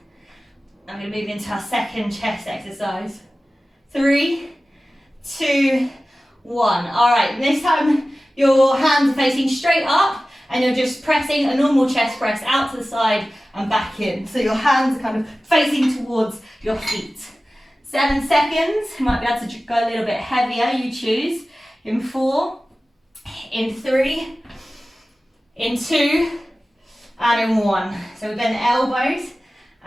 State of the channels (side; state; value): both; normal; correlation 0.96